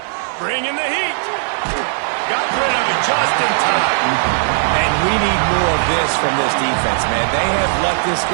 Bringing the heat. Got rid of it just in time. And we need more of this from this defense, man. They have let this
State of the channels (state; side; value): silent; left; digital silence